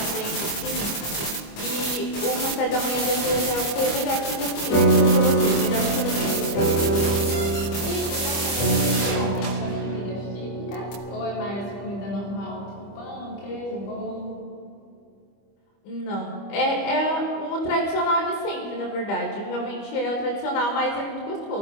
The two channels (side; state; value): right; late; 25 ms